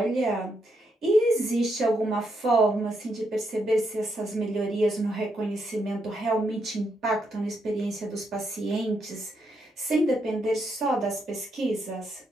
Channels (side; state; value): both; normal; correlation 0.79